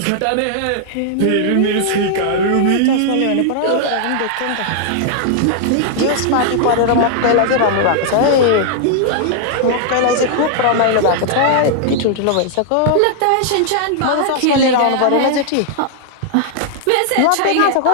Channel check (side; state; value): both; different; correlation -0.01